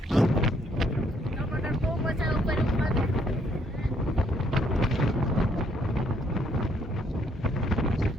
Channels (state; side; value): normal; both; correlation 0.69